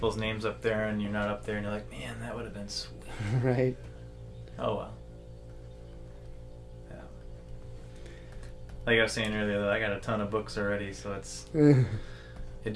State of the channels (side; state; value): both; identical; correlation 1.00